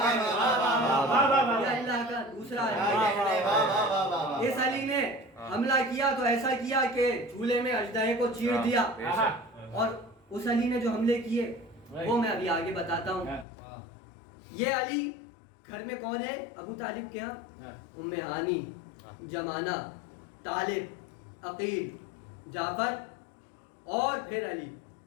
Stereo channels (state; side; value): drops out; right; at 13.5 s